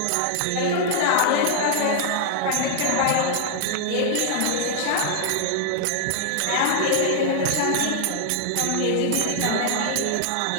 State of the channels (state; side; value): different; both; correlation -0.01